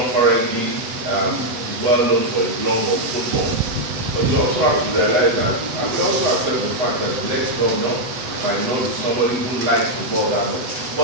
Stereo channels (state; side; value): late; left; 8.4 ms